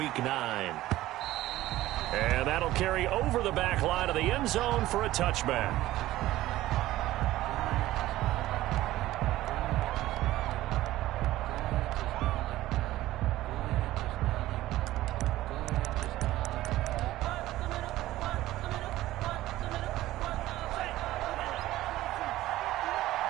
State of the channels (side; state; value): left; quieter; 15.7 dB